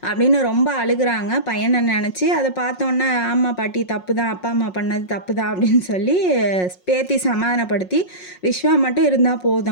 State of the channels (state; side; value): late; right; 5.5 ms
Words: அப்படின்னு ரொம்ப அழுகுறாங்க பையனை நினச்சி. அதை பார்த்தோன்னே ஆமாம் பாட்டி தப்பு தான், அப்பா அம்மா பண்ணது தப்பு தான் அப்படின்னு சொல்லி பேத்தி சமாதானப்படுத்தி விஸ்வா மட்டும் இருந்தால்